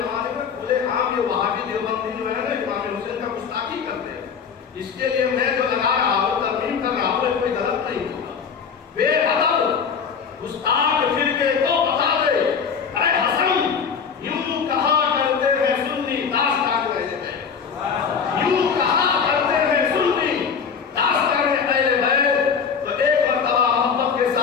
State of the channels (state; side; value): quieter; right; 6.5 dB